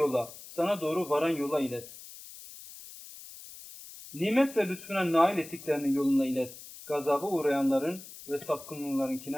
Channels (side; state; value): left; noise; hiss, 16 dB below the sound